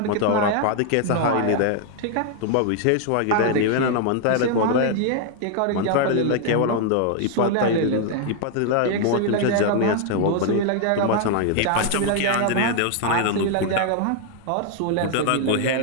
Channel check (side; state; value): both; different; correlation 0.00